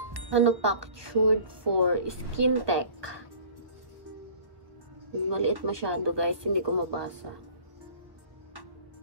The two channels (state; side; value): late; left; 1.0 ms